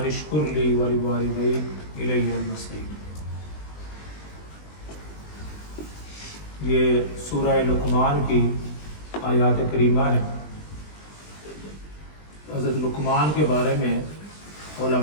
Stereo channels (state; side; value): late; right; 20 ms